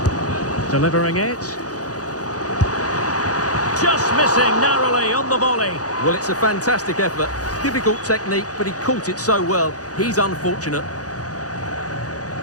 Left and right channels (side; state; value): right; late; 0.67 ms